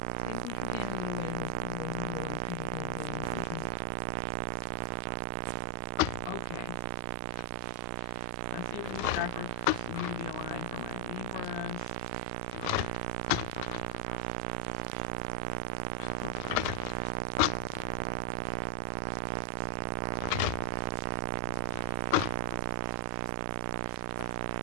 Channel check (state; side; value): different; both; correlation 0.00